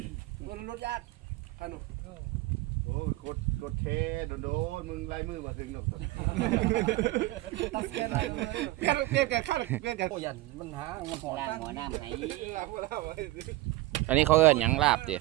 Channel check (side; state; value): left; quieter; 18.5 dB